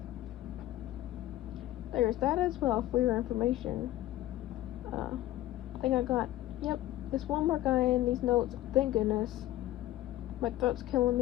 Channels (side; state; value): right; quieter; 14.8 dB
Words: there's that as well for your information. I think I got, yep, there's one more guy in these notes. Thank goodness. My throat's killing